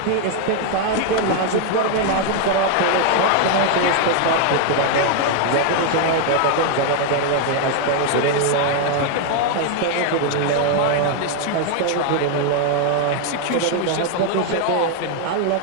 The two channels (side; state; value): both; different; correlation 0.00